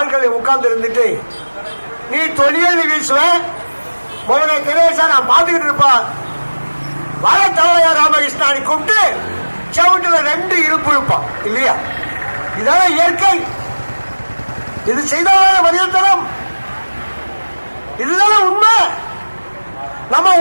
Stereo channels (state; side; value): inverted; both; correlation -1.00